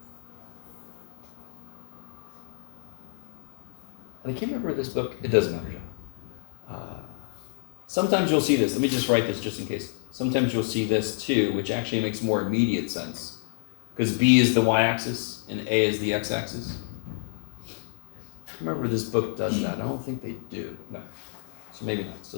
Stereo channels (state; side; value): silent; right; 59 dB below the other